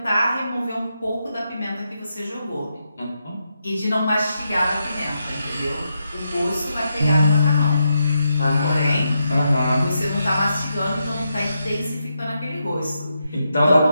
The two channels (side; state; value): both; inverted; correlation -0.84